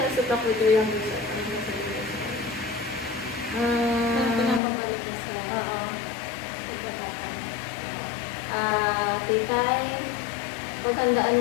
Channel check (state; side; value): drops out; right; at 4.6 s